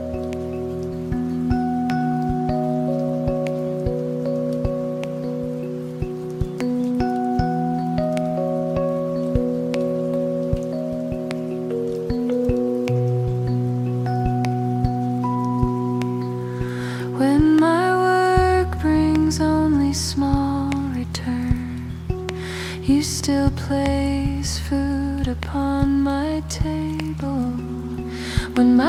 When my work brings only small return, you still place food upon my table. When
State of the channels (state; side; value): identical; both; correlation 1.00